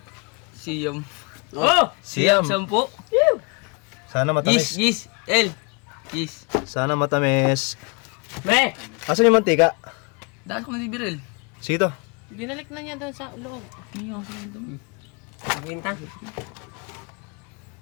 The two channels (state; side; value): quieter; right; 31.9 dB